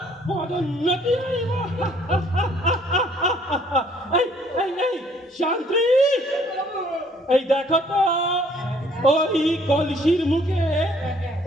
পদোন্নতি হইব। শান্তি, এই দেখো তো ওই কলসির মুখে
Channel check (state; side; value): normal; both; correlation 0.61